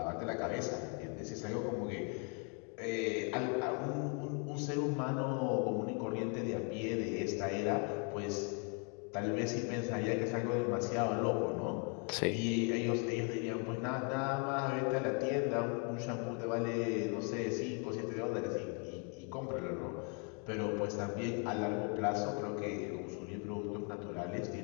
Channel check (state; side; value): quieter; right; 37.5 dB